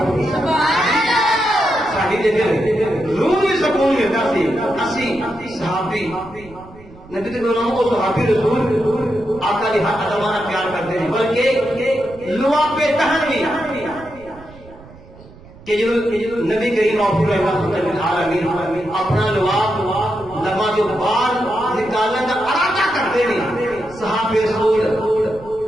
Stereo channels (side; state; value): right; noise; rumble, 21 dB below the sound